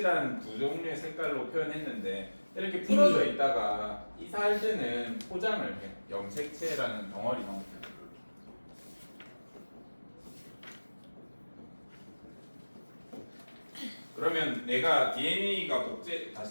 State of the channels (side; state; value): both; inverted; correlation -1.00